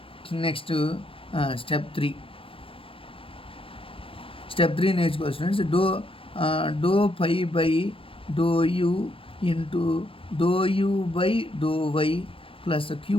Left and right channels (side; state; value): right; late; 0.26 ms